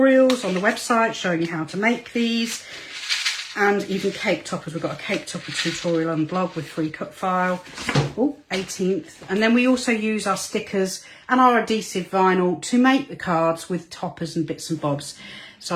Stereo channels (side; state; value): both; identical; correlation 1.00